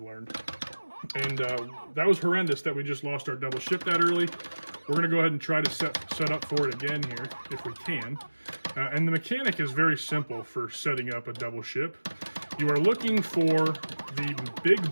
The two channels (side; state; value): both; inverted; correlation -1.00